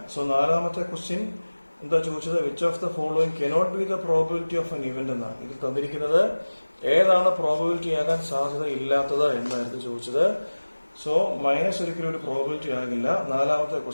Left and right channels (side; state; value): both; inverted; correlation -1.00